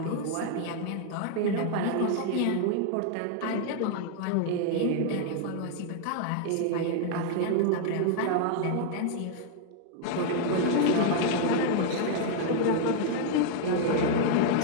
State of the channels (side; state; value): both; different; correlation 0.00